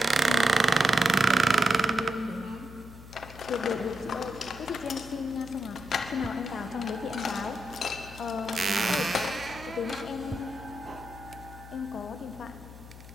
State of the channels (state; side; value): noise; left; hum, 16 dB below the sound